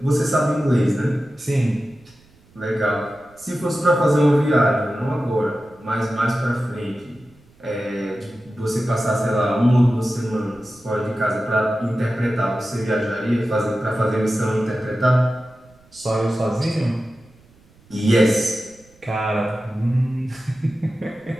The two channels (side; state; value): right; noise; rumble, 29 dB below the sound